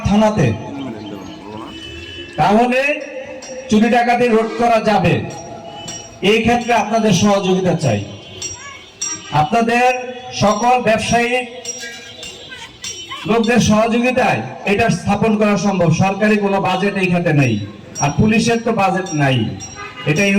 থানাতে, তাহলে চুরি ডাকাতি রোধ করা যাবে। এই ক্ষেত্রে আপনাদের সহযোগিতা চাই। আপনাদের সকল ব্যবসায়ী লোকদের সহযোগিতায় এটা স্থাপন করা সম্ভব। সরকারি কোনো বাজেট এই খাতে নেই, আর পুলিশের তো বাজেট নাই। এটা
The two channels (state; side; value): identical; both; correlation 1.00